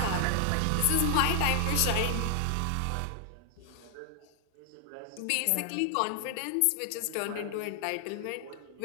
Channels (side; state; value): both; different; correlation 0.00